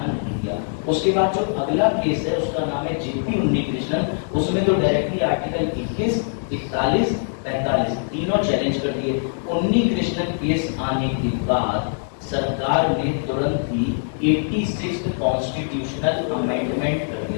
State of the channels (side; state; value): right; silent; digital silence